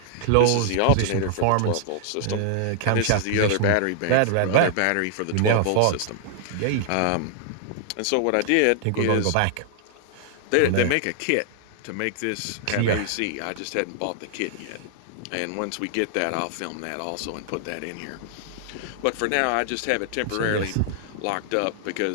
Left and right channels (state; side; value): different; both; correlation 0.00